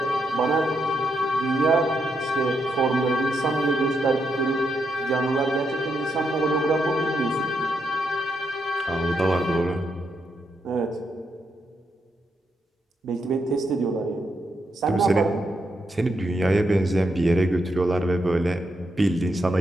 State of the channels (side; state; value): both; normal; correlation 0.80